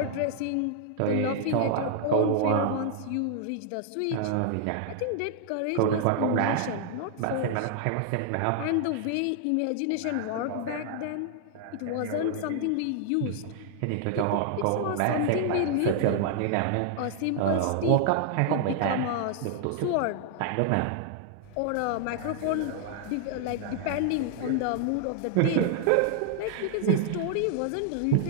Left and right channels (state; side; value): different; both; correlation 0.00